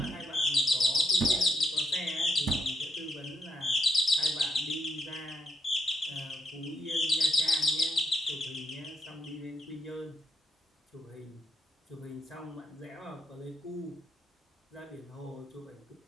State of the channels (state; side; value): normal; both; correlation 0.76